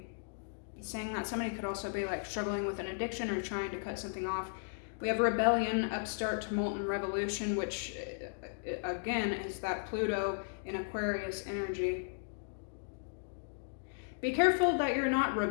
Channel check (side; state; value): right; silent; digital silence